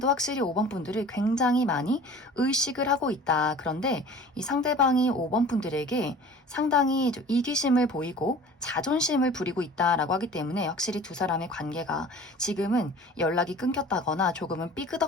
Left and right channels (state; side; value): normal; both; correlation 0.44